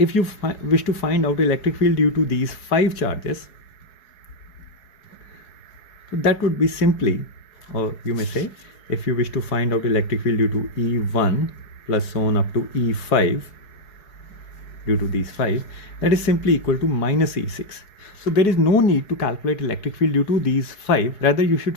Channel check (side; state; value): right; late; 4.7 ms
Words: you wish to find out electric field due to these 5 charges, so that would be simply, or you may say, if you wish to find out electric field due to E1 plus so on up to E5 due to these 5, that is simply equal to minus E6. So there is no need to calculate electric field due to these 5. Rather, you should